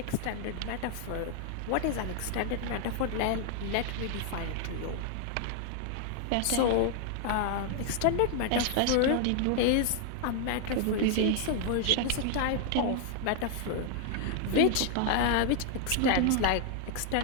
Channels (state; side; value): different; both; correlation 0.00